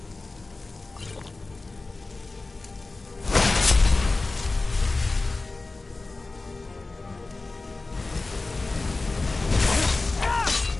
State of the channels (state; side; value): quieter; right; 3.4 dB